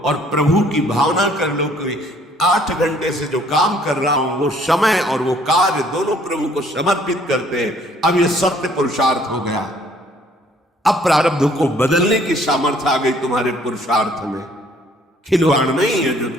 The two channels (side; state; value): both; normal; correlation 0.60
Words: और प्रभु की भावना कर लो कि 8 घंटे से जो काम कर रहा हूं वो समय और वो कार्य दोनों प्रभु को समर्पित करते हैं, अब ये सत्य पुरुषार्थ हो गया। अब प्रारब्ध को बदलने की सामर्थ्य आ गई तुम्हारे पुरुषार्थ में। खिलवाड़ नहीं है जो